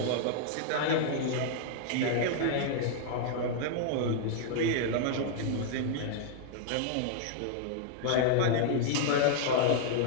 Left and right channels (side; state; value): both; different; correlation 0.00